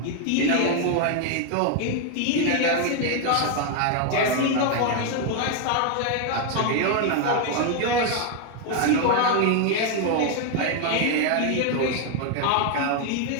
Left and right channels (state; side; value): different; both; correlation 0.01